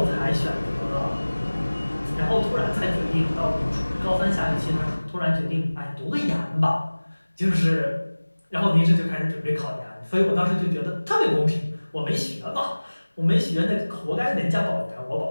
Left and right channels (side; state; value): both; inverted; correlation -1.00